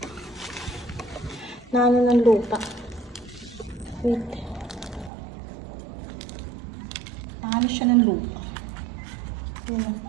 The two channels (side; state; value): left; drops out; at 5.1 s